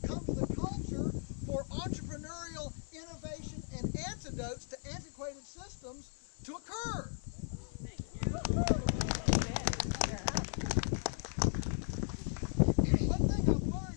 come to the culture for entrepreneurial innovation and antidotes to antiquated systems to occur. One thing I've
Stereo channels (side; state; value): right; silent; 53 dB below the other